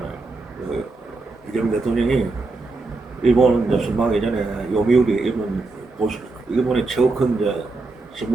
이재명 대통령이 일본은 이제 순방하기 전에 요미우리 일본의 최고 큰 이제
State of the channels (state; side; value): quieter; left; 3.5 dB